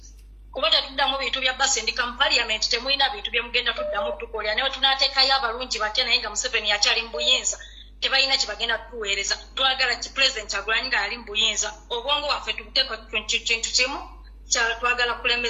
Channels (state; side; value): identical; both; correlation 1.00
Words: kuba tetuddamu bintu bya basendika mu parliament temulina bintu bye mugenda tuddamu tukolera newe tunateekayo abalungi batya naye nga Museveni akyali mu buyinza tebalina kye bagenda tuweereza twagala ki president Kyagulanyi nga ali mu buyinza obwongo waffe tubuteeka kintu kimu twagala